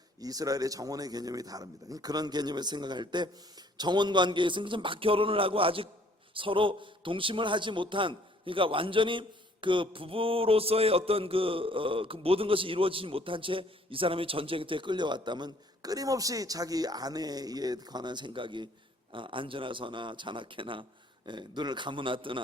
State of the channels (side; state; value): both; normal; correlation 0.60